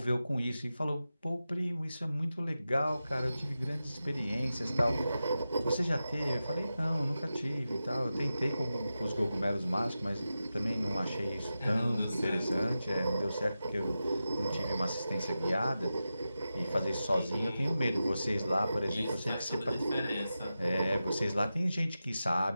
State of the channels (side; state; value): both; inverted; correlation -0.92